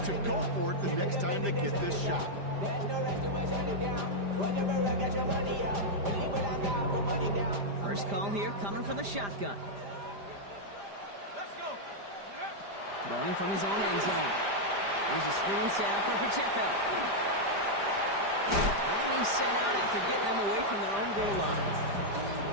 to go for it the next time they get this shot? First call here coming from the shotgun. Let's go. Throwing from his own end zone. Here's a screen sound for Pacheco. And he's sent out after getting them away from their own goal line.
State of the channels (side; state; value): left; late; 5.0 ms